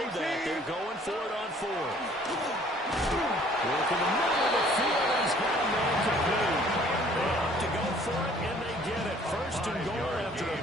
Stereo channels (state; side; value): normal; both; correlation 0.56